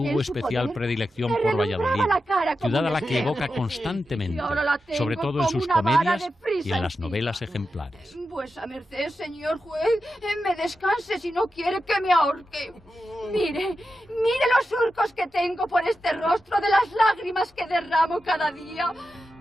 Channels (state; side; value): normal; both; correlation 0.90